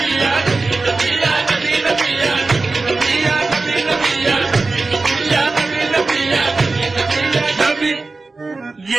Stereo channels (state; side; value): quieter; left; 3.7 dB